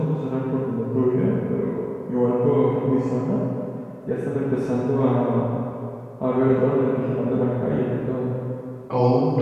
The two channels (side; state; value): both; identical; correlation 1.00